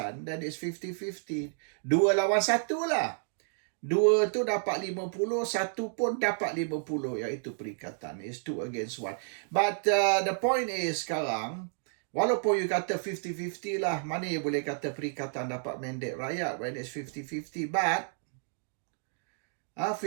then it's 50-50. 2 lawan 1 lah. 2 tu dapat 50, 1 pun dapat 50, iaitu perikatan. It's 2 against 1. But the point is sekarang, walaupun you kata 50-50 lah, mana you boleh kata perikatan dapat mandate rakyat when it's 50-50. But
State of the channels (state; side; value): silent; left; digital silence